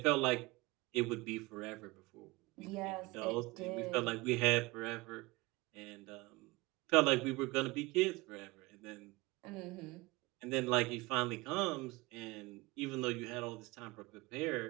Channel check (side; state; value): left; quieter; 23.1 dB